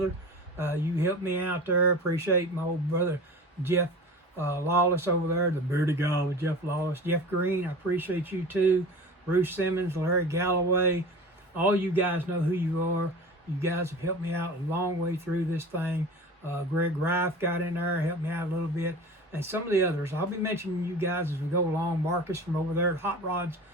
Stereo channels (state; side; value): normal; both; correlation 0.36